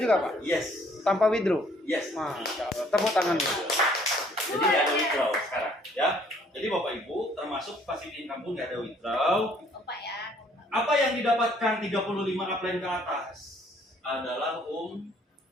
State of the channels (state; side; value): normal; both; correlation 0.61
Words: juga Pak? Yes. Tanpa withdraw? Yes. Masya Allah. Tepuk tangan. Jadi nggak ada withdraw sekarang, ya. Jadi Bapak Ibu termasuk passive income pun nggak ada withdraw. Opa ya. Apa yang didapatkan 35 upline ke atas adalah Umroh.